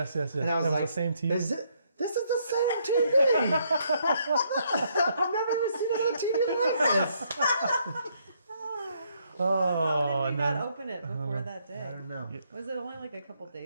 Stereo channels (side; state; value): both; inverted; correlation -0.72